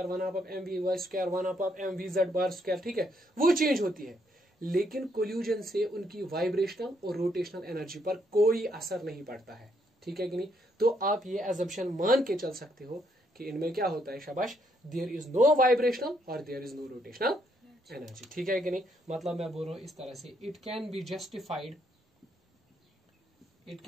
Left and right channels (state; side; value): normal; both; correlation 0.73